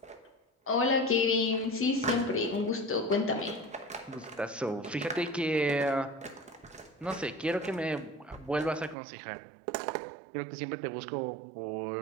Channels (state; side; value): drops out; left; at 9.0 s